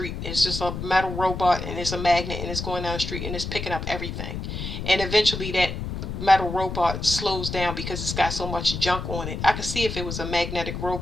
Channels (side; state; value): left; noise; rumble, 5 dB below the sound